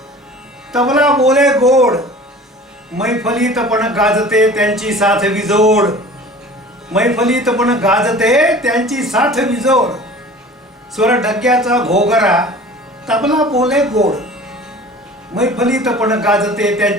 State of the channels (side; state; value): both; normal; correlation 0.42